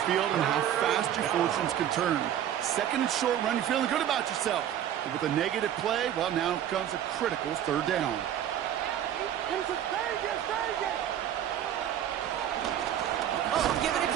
field and how fast your fortunes can turn. 2nd and short run, you're feeling good about yourself. But with a negative play, well, now comes a critical 3rd down. Oh, giving it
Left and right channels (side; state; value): left; quieter; 10.6 dB